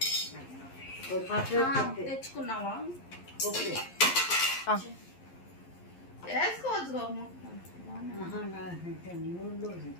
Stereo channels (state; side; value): late; right; 11 ms